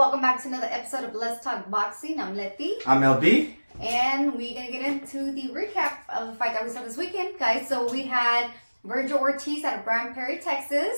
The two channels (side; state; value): both; inverted; correlation -1.00